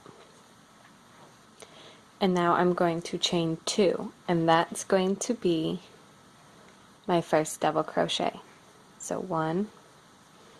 And now I'm going to chain two, and that's going to be my first double crochet. So 1,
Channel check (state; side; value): identical; both; correlation 1.00